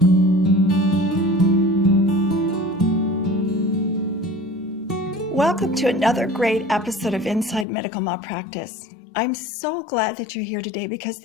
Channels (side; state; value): right; drops out; at 7.7 s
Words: Welcome to another great episode of Inside Medical Malpractice. I'm so glad that you're here today because